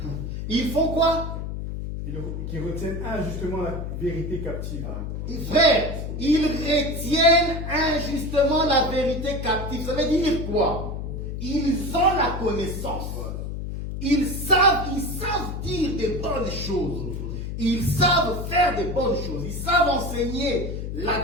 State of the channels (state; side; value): noise; left; hum, 5 dB below the sound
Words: Ils font quoi? Qui retiennent injustement la vérité captive. Frère, ils retiennent injustement la vérité captive. Ça veut dire quoi? Ils ont la connaissance. Ils savent dire des bonnes choses. Ils savent faire des bonnes choses. Ils savent enseigner